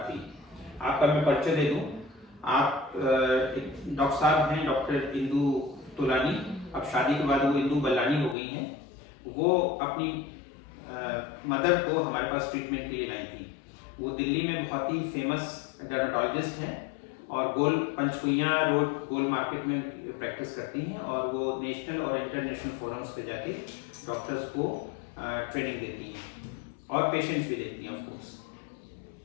थी। आपका मैं परिचय दे दूं, आप डॉक्टर साहब हैं डॉक्टर इंदु तोलानी। अब शादी के बाद वो इंदु बल्लानी हो गई हैं। वो अपनी मदर को हमारे पास ट्रीटमेंट के लिए लाई थी। वो दिल्ली में बहुत ही फेमस डर्मेटोलॉजिस्ट हैं और गोल पंचकुइया रोड गोल मार्केट में प्रैक्टिस करती हैं और वो नेशनल और इंटरनेशनल फोरम्स पे जाके डॉक्टर्स को ट्रेनिंग देती हैं और पेशेंट्स भी देखती हैं ऑफ कोर्स।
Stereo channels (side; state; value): right; drops out; at 8.3 s